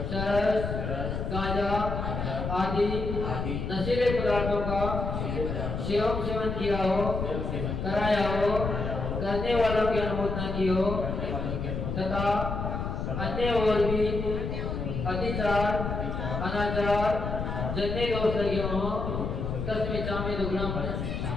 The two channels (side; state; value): left; noise; rumble, 3 dB below the sound